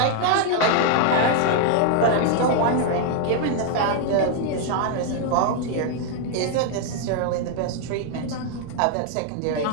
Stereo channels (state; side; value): different; both; correlation 0.00